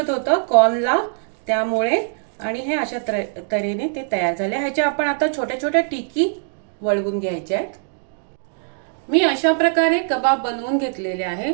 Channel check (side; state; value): left; silent; digital silence